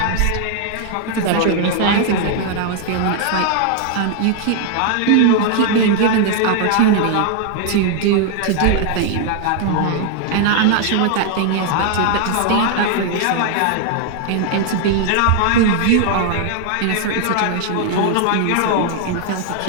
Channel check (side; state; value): both; different; correlation 0.00